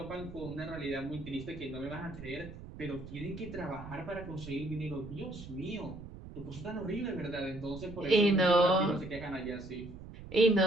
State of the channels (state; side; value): noise; right; rumble, 13 dB below the sound